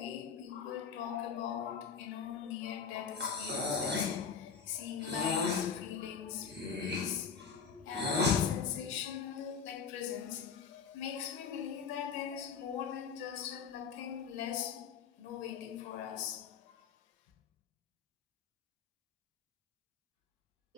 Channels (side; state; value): right; quieter; 6.2 dB